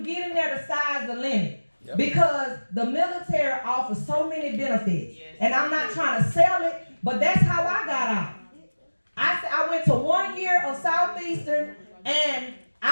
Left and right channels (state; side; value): inverted; both; correlation -1.00